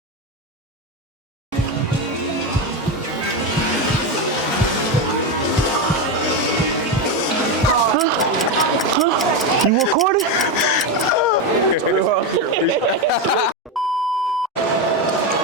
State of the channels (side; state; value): both; normal; correlation 0.12